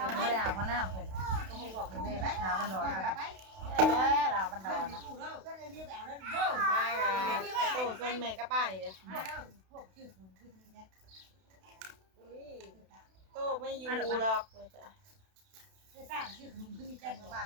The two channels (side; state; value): left; late; 32 ms